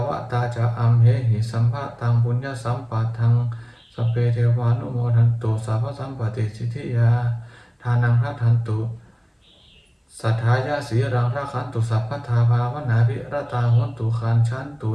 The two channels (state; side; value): identical; both; correlation 1.00